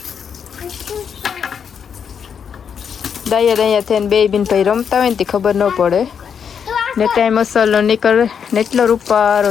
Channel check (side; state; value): right; quieter; 7.3 dB